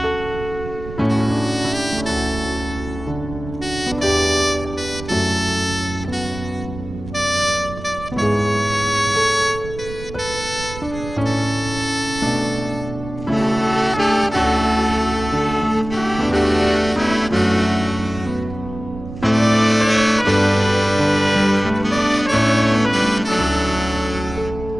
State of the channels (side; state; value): right; noise; rumble, 12 dB below the sound